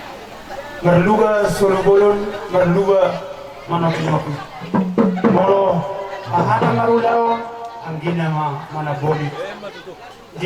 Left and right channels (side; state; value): both; identical; correlation 1.00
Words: Merluga sulubolon, merluga manapinok. Moro, ahana marulao ang ginama manaboli.